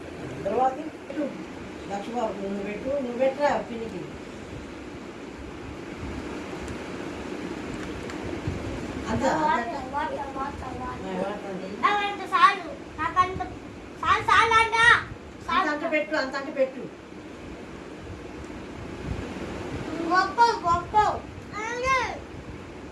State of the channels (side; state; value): both; identical; correlation 1.00